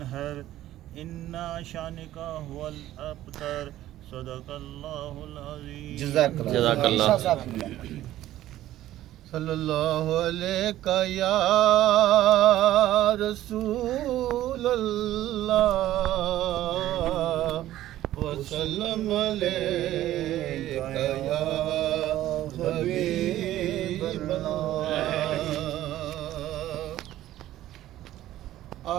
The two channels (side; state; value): left; quieter; 13.9 dB